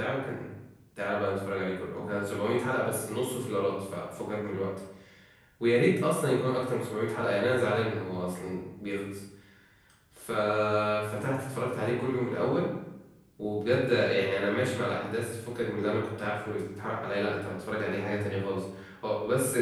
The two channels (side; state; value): both; identical; correlation 1.00